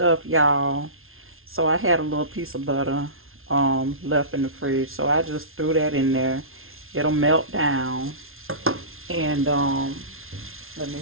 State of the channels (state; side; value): late; left; 0.61 ms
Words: y'all. So I had a little piece of butter left in the fridge, so I just threw that in there. It'll melt down. And let me